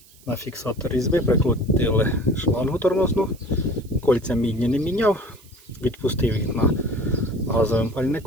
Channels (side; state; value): right; noise; hiss, 26 dB below the sound